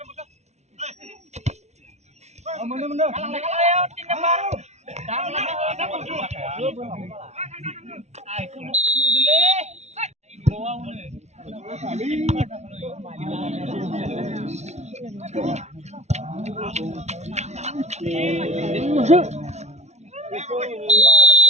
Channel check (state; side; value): late; left; 0.32 ms